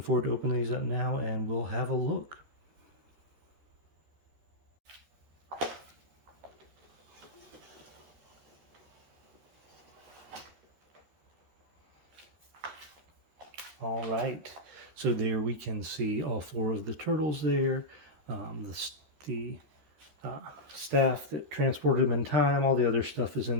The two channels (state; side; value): late; left; 13 ms